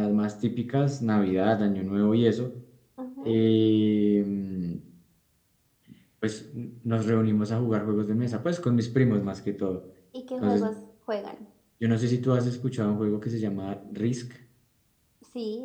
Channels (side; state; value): both; identical; correlation 1.00